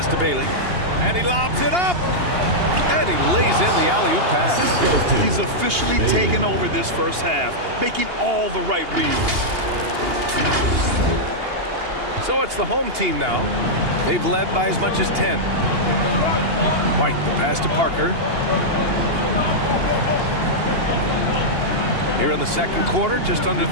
to Bailey. And he lobs it up. And he lays in the alley-oop pass. He's officially taken over this first half, making all the right reads. So it's the home team now. They've led by as much as 10. White, the pass to Parker. Here in the second quarter, just under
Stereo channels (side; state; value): left; late; 2.8 ms